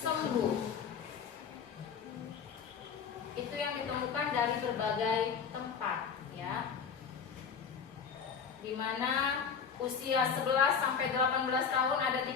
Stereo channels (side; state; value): right; quieter; 6.6 dB